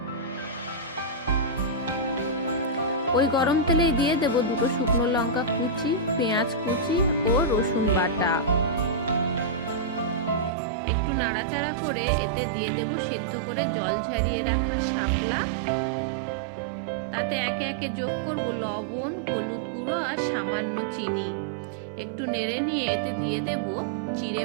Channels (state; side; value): drops out; left; at 10.5 s